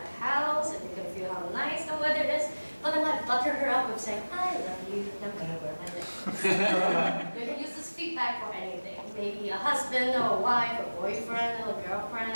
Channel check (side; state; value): both; inverted; correlation -1.00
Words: house and you can feel how nice the weather is. But then I butter her up with saying, I love you, and I'm going to wear my leggings. You can use this feedback for anything. Maybe a husband or a wife, a boyfriend or a girlfriend,